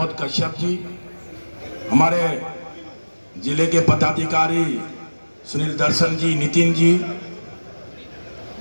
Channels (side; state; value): both; inverted; correlation -1.00